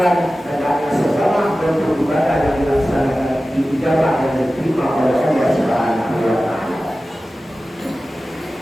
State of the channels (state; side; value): normal; both; correlation 0.95